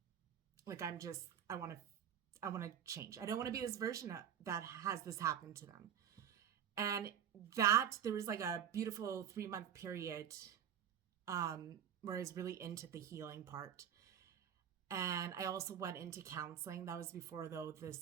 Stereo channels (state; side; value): quieter; left; 9.3 dB